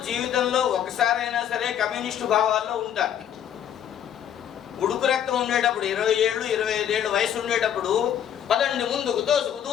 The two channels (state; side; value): quieter; right; 9.7 dB